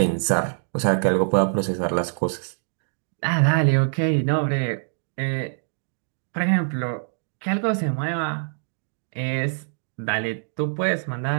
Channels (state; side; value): silent; left; digital silence